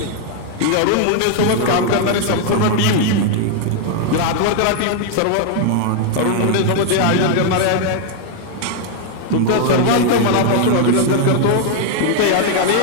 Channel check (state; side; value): different; both; correlation 0.00